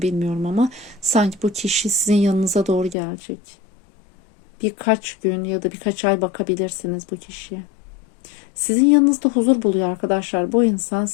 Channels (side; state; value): right; drops out; at 3.0 s